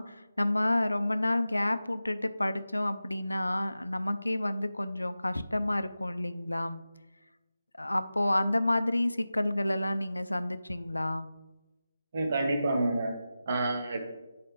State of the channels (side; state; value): both; inverted; correlation -0.94